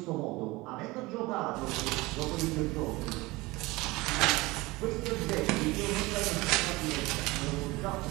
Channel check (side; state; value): left; quieter; 21.8 dB